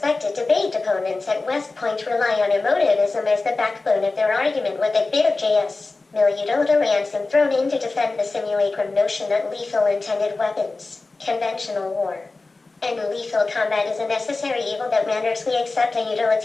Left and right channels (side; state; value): right; quieter; 3.5 dB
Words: debate opponents at West Point rely on emotivism as the backbone of their argument with a bit of JS. Miliudota ransom thrown in to defend the simulacrum notion that lethal intended weapons, conventional war, And lethal combat is a necessary evil that renders we accept a